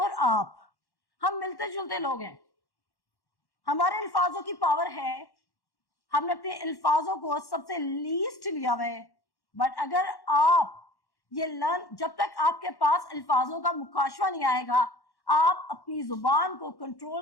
आप, हम मिलते जुलते लोग हैं, हमारे अल्फाजों की पावर है, हमने अपने अल्फाजों को सबसे लीस्ट लिया हुआ है। बट अगर आप ये लर्न, जब तक आपके पास अल्फाजों का मुकाशवा नहीं आएगा, आप अपनी जुबान को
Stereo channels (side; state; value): right; late; 1.1 ms